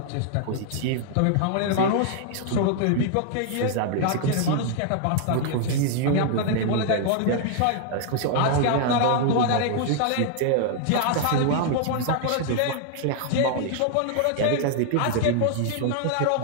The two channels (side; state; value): both; different; correlation -0.01